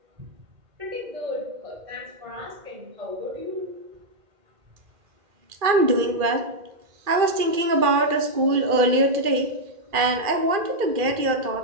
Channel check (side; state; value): left; late; 2.4 ms